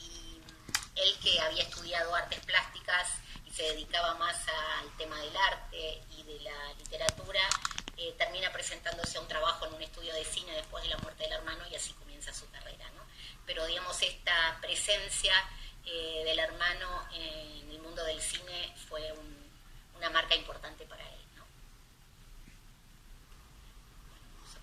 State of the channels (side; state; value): both; identical; correlation 1.00